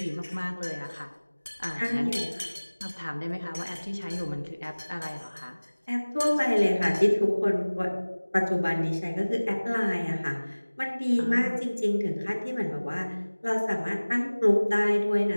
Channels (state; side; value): inverted; both; correlation -1.00